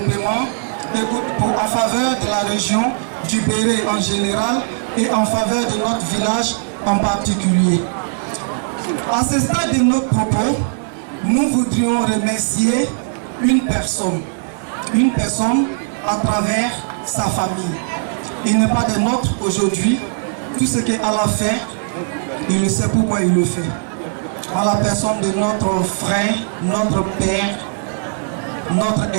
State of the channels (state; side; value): silent; left; digital silence